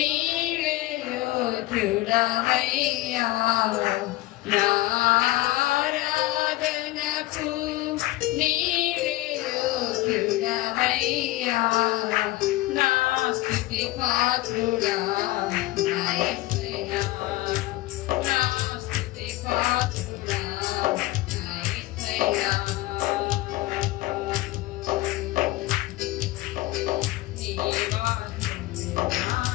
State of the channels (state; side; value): quieter; right; 18.2 dB